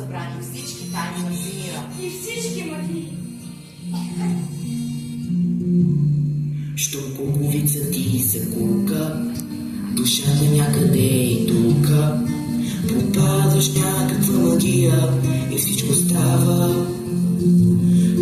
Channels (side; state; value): both; identical; correlation 1.00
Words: всички тайни на всемира. И всички магии. Що куковица ти се кука, душата някъде и тука, попадаш някаква магия и всичко става